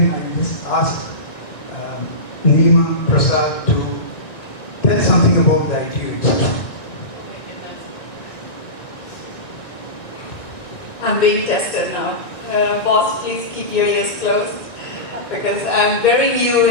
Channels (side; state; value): right; late; 1.9 ms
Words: I just asked Nima Prasad to tell something about the ITU itself. I'm being tested now. Boss, please keep your ears closed because I'm very new